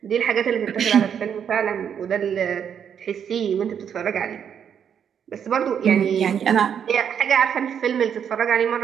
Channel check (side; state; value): left; quieter; 8.1 dB